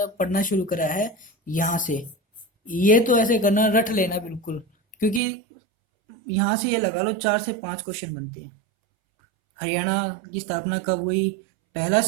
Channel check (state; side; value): drops out; left; at 5.2 s